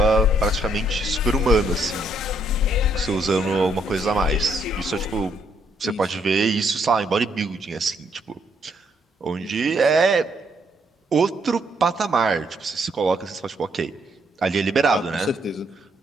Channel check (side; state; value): both; normal; correlation 0.72